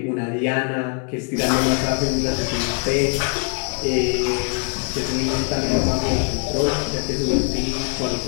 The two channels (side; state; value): right; quieter; 37.8 dB